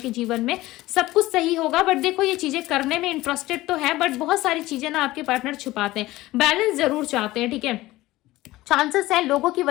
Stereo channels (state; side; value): quieter; right; 17.7 dB